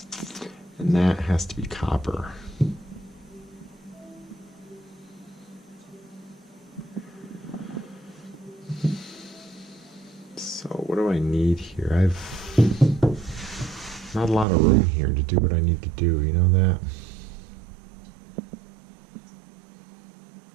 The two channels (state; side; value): drops out; left; at 14.5 s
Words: And that has to be copper. So what do I need here? I've not a lot of room here to do what I need to do, you know that?